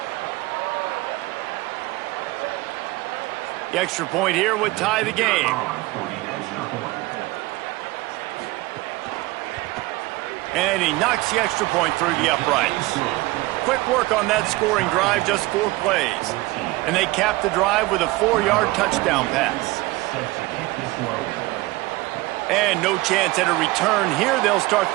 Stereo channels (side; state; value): left; quieter; 20.5 dB